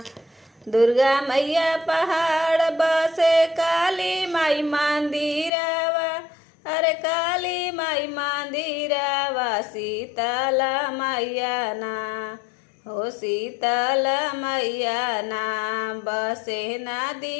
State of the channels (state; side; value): drops out; right; at 5.5 s